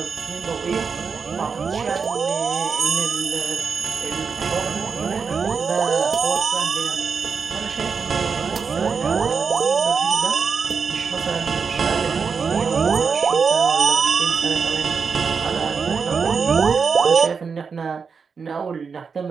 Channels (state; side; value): quieter; left; 5.6 dB